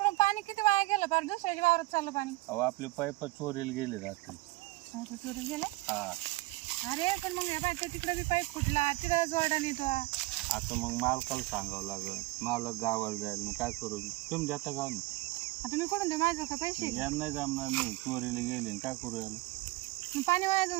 पाणी किती वाया गेलं पार दुसऱ्याच्या वावरात चाललं पाणी. अहो आपले पाईप चोरीला गेले रात्री. चोरी गेले. हा अरे पण मग बाय तिकडं बी पाईप फुटला तिकडं जोडा नेतो. आता मग मालकाला सांगावं लागल, मालक गावाला जाईल, मग काय करू मी? तुम्ही जाता का ना? आता मी कुठून देऊ माझं का पैसे? यांना नाही जमणार, नाही चोरीला गेले आणि काय करू याला? मग पाणी वाया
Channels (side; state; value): left; quieter; 21.3 dB